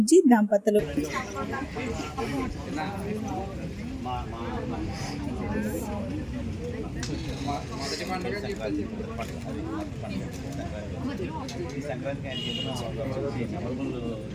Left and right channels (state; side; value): identical; both; correlation 1.00